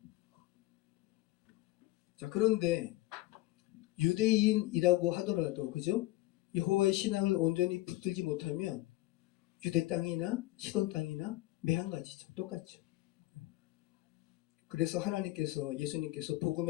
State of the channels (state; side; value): quieter; right; 17.7 dB